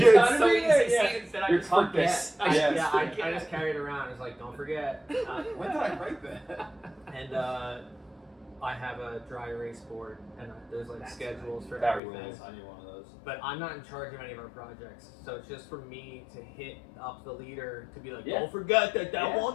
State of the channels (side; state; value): right; drops out; at 12.0 s